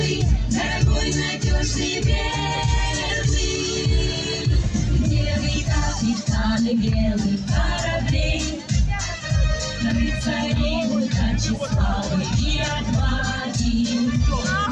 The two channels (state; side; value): identical; both; correlation 1.00